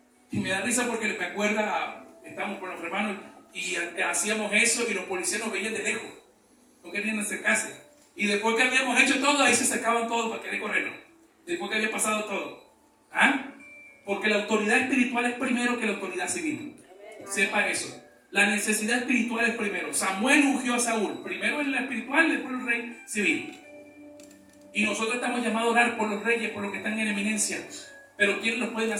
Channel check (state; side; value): identical; both; correlation 1.00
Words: Y me da risa porque me acuerda, estamos con los hermanos y hacíamos eso y los policías nos veían de lejos. No querían acercarse. Y después que habíamos hecho todo, ahí se acercaban todos para querer corrernos. Después que había pasado todo. ¿Ah? Porque la autoridad espiritual es primero que la autoridad civil. Sepa eso. La necesidad espiritual es primero. Samuel ungió a Saúl. Primero en la espiritual, después el rey civil. Y nosotros estamos llamados a orar por los reyes, por los que están en eminencia. Pero ¿quiénes lo pueden